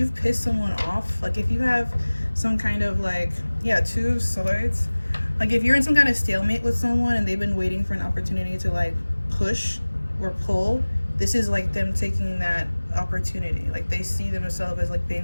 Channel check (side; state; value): both; inverted; correlation -1.00